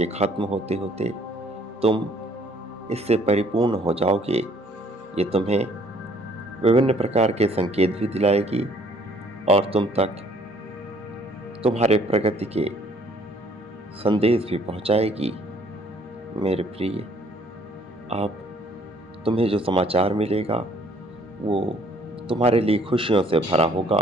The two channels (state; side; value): normal; both; correlation 0.61